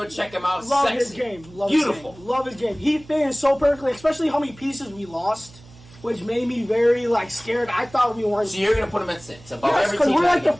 check him out. Love Sexy. his game. Love Beautiful. His game. Love his game. He fit in so perfectly, especially how many pieces we lost, which made me very scared. I thought we weren't. So you're going to put him at 6 above Yes, every because team. we're like the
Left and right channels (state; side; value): noise; right; hum, 23 dB below the sound